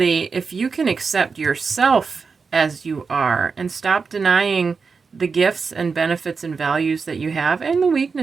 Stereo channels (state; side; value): quieter; left; 5.1 dB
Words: if you can accept yourself as you are and stop denying the gifts and benefits and values that you have and the